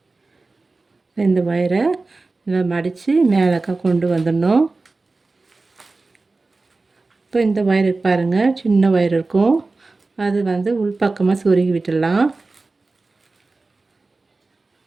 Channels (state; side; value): quieter; left; 3.5 dB